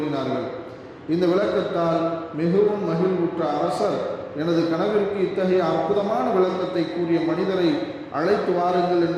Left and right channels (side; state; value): both; identical; correlation 1.00